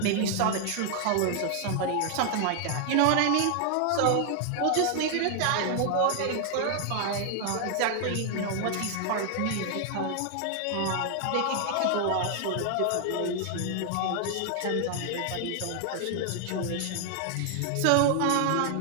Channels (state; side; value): different; both; correlation 0.00